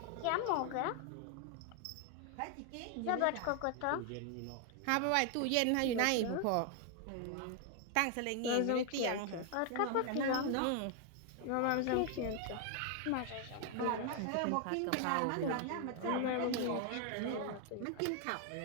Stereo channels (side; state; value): both; different; correlation 0.00